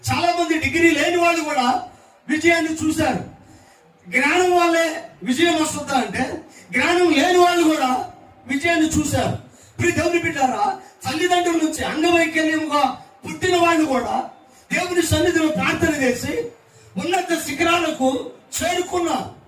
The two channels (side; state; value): both; identical; correlation 1.00